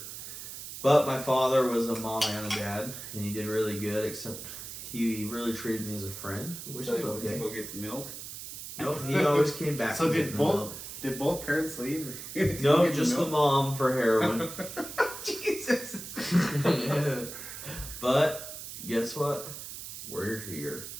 But my father was a mom and a dad, and he did really good, except he really treated me as a friend, which is okay. Did you go get the milk? Nope, he always came back. So to did both parents leave? No, just the mom for heroin. Jesus. But guess what? We're here.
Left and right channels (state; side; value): noise; right; hiss, 10 dB below the sound